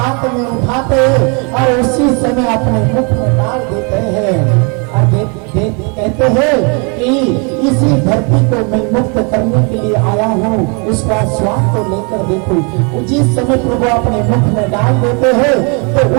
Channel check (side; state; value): left; quieter; 34.6 dB